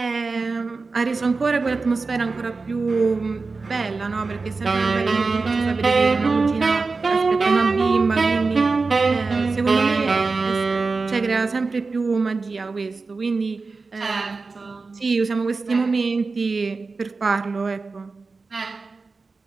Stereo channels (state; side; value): quieter; left; 4.1 dB